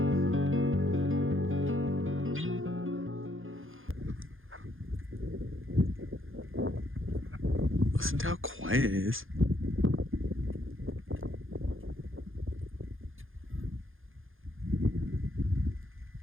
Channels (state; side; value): late; left; 0.59 ms